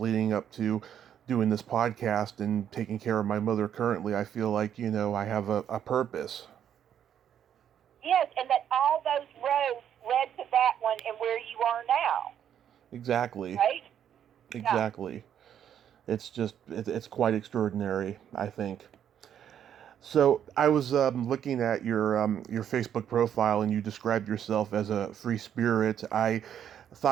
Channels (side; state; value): left; quieter; 9.4 dB